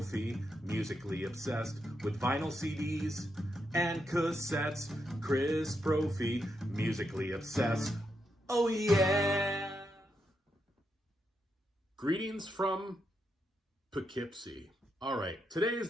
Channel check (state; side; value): normal; both; correlation 0.82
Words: musically obsessed with vinyl CDs and cassettes. Chris Brophy, musically obsessed. Oh yeah! Greetings from Poughkeepsie. All right, today is